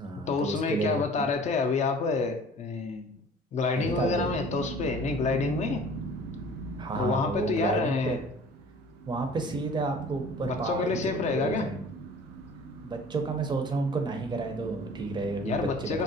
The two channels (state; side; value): normal; both; correlation 0.47